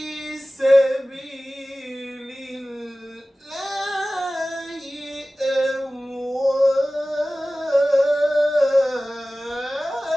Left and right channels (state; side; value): normal; both; correlation 0.97